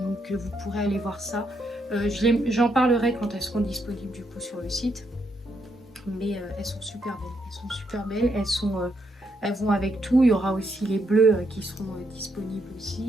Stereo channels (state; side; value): normal; both; correlation 0.77